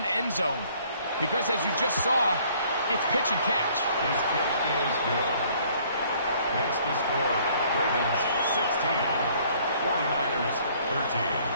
end zone because, as you just saw, it's pitch and catch. His kick is good. Makes the score Ravens 16, 49ers 13.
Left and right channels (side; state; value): both; inverted; correlation -0.60